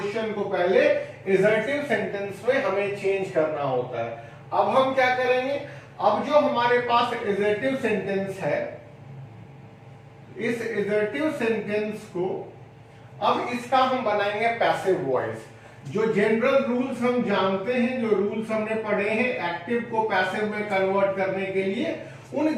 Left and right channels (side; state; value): both; identical; correlation 1.00